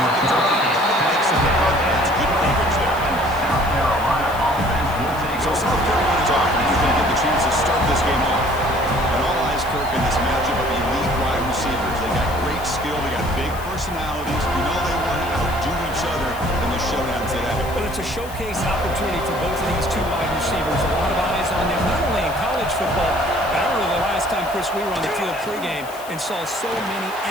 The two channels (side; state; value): left; noise; hiss, 18 dB below the sound